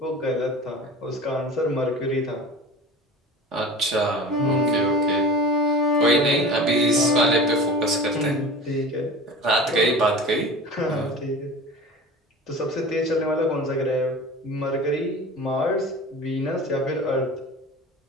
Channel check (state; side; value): normal; both; correlation 0.36